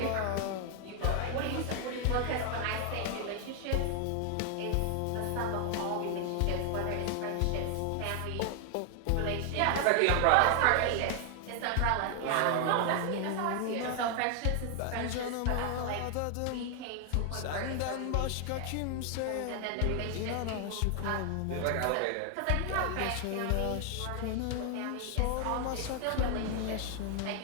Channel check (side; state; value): both; different; correlation 0.00